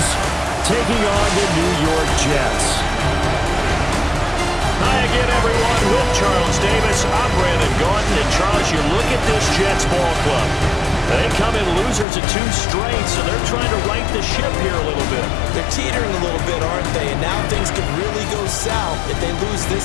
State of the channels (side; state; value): right; drops out; at 12.1 s